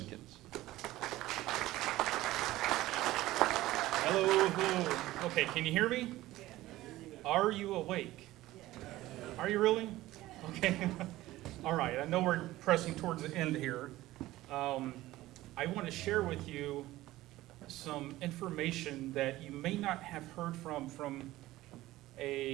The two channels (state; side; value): quieter; left; 16.6 dB